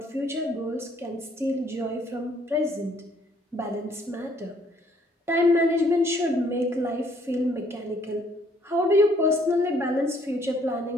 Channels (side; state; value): both; normal; correlation 0.64